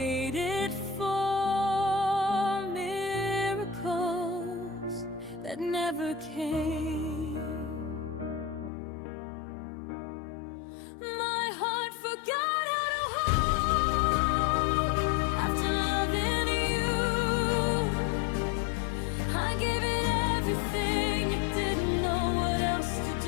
for miracles that never came. My heart forgot how to hope after loving you. I gave it everything, you didn't know what else to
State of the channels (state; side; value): drops out; right; at 8.7 s